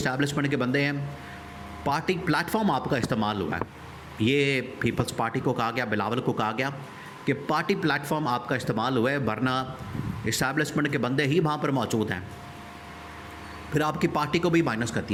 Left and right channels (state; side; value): identical; both; correlation 1.00